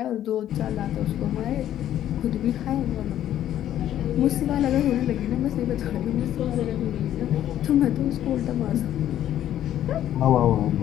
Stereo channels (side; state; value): right; quieter; 11.7 dB